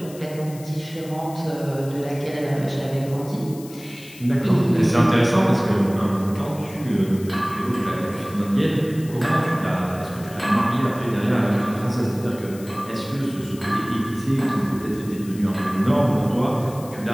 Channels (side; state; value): left; noise; hiss, 19 dB below the sound